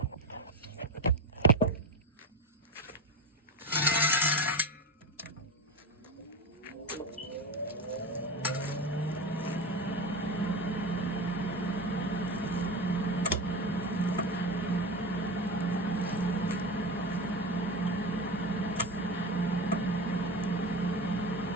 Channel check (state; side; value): normal; both; correlation 0.22